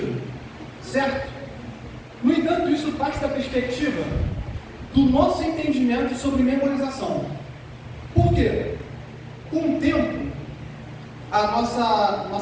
certo? No entanto, isso parte da perspectiva do nosso entendimento sobre memorização. Por quê? Com o tempo, a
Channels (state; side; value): identical; both; correlation 1.00